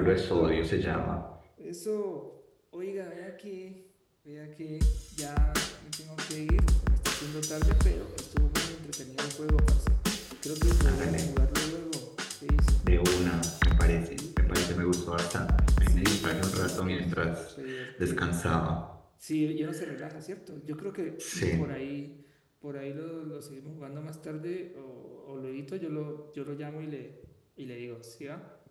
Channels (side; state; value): both; identical; correlation 1.00